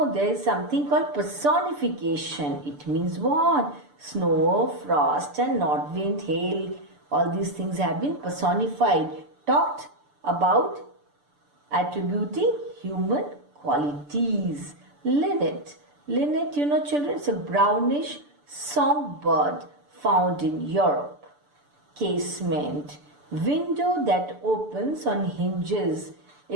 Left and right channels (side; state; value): left; late; 6.8 ms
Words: there is something called personification. It means what? Snow, frost and north wind, hail, all these things have been personified, talked about, attributing human qualities. Linnet. Linnet, you know children, it's a brownish songbird found in Europe. Casement. Window that opens on hinges.